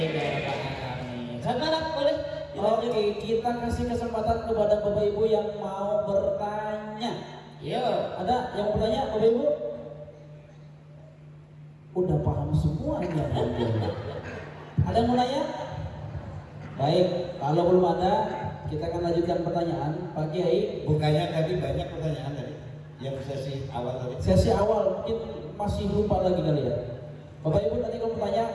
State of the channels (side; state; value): both; identical; correlation 1.00